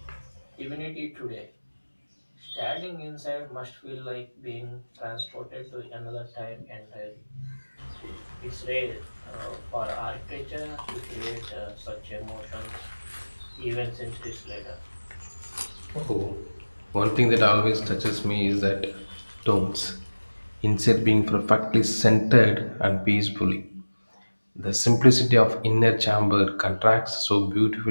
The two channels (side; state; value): both; inverted; correlation -1.00